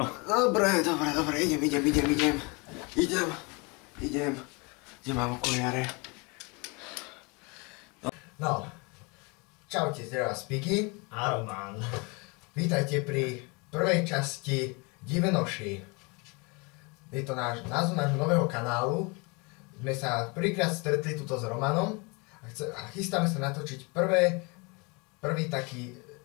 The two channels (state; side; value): quieter; right; 29.5 dB